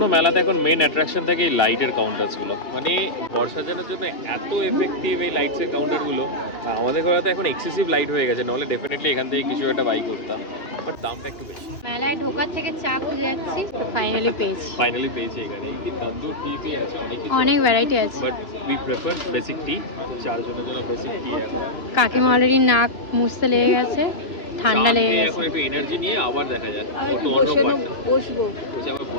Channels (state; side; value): late; right; 3.1 ms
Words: মেলাতে এখন মেইন অ্যাট্রাকশন থাকে এই লাইটের কাউন্টারসগুলো মানে ঘর সাজানোর জন্য এত এফেক্টিভ এই লাইটসের কাউন্টারগুলো আমাদের ঘরে তো এখন এক্সেসিভ লাইট হয়ে গেছে নাহলে ডেফিনেটলি এখান থেকে কিছু একটা বাই করতাম বাট দামটা একটু বেশি মেলায় ঢোকার থেকে চা খুঁজে যাচ্ছি ফাইনালি পেয়েছি ফাইনালি পেয়েছি এখানে কি তন্দুর টি আছে অনেক কিছু অনেক ভ্যারাইটি আছে but we prefer basic T চারজনের জন্য বেসিক টি আছে কাকিমা অলরেডি নাক মুছতে লেগে গেছে ঠান্ডা লেগে গেছে এখন একটু এনার্জি নিয়ে আবার দেখা যাক বসবো